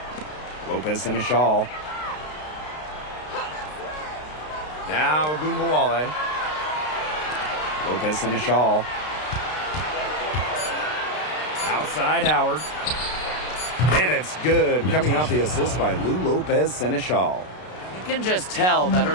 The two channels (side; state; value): right; late; 33 ms